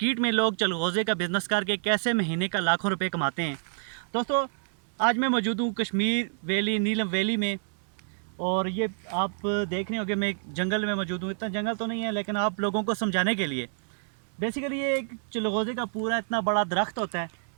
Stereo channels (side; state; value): left; silent; digital silence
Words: में लोग चलगोज़े का बिज़नेस करके कैसे महीने का लाखों रुपए कमाते हैं। दोस्तों, आज मैं मौजूद हूँ कश्मीर वैली, नीलम वैली में, और ये आप देख रहे होंगे मैं एक जंगल में मौजूद हूँ। इतना जंगल तो नहीं है, लेकिन आप लोगों को समझाने के लिए बेसिकली ये एक चलगोज़े का पूरा इतना बड़ा दरख्त होता है